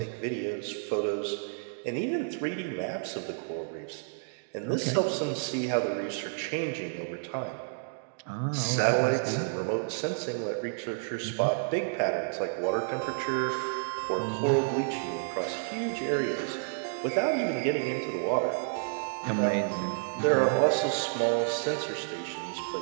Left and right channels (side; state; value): left; silent; digital silence